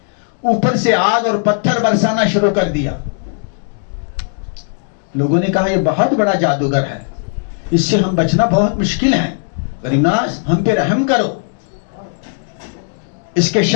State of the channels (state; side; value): silent; right; digital silence